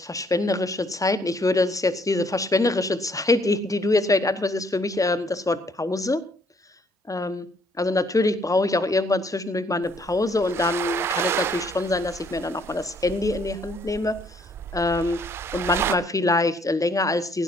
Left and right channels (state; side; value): normal; both; correlation 0.65